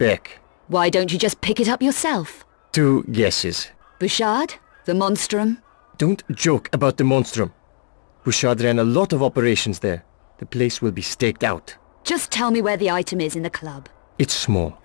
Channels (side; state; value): right; silent; digital silence